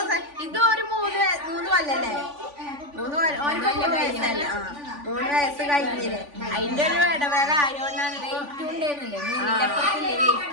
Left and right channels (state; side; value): late; left; 3.5 ms